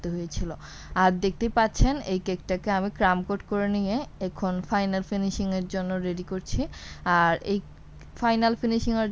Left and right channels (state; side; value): identical; both; correlation 1.00